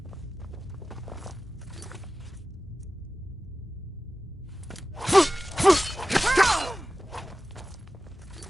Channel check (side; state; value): both; normal; correlation 0.95